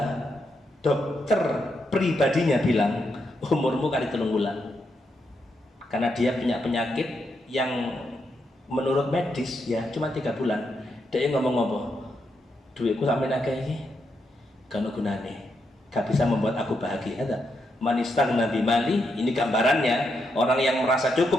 dokter pribadinya bilang umurmu kali 3 bulan, karena dia punya penyakit yang menurut medis ya cuma 3 bulan. Dia ngomong apa? Duitku sampai akeh iki gak ono gunane, gak bisa membuat aku bahagia. Manistan nabi mali, ini gambarannya orang yang merasa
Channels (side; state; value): both; normal; correlation 0.81